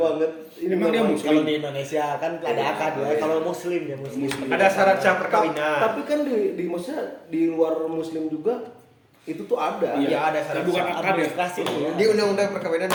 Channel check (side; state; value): both; identical; correlation 1.00